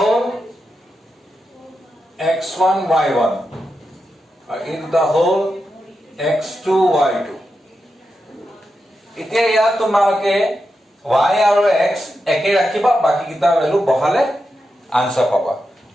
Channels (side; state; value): both; normal; correlation 0.88